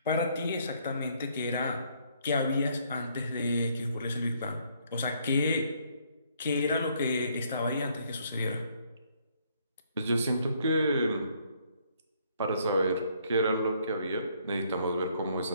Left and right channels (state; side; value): inverted; both; correlation -0.67